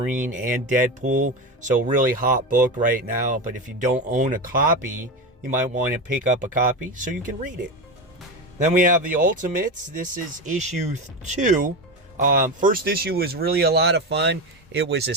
and Deadpool. So really hot book right now. But if you don't own a copy, you might want to pick up a copy so you can read it. Then we have the Ultimates. This is issue 2. First issue was really a lot of fun. It was a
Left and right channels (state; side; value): normal; both; correlation 0.19